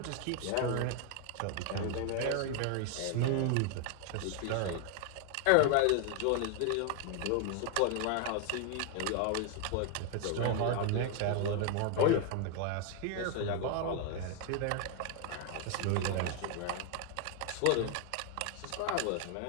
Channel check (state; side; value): different; both; correlation 0.01